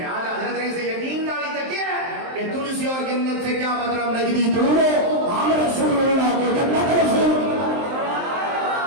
آج حضرت نے سے یقین ڈالی تو کیا ہے کہ تلسی اور جنت سے کیا مطلب نجدی دور ہو ہم رسول اللہ کو جنت رسول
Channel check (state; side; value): late; left; 23 ms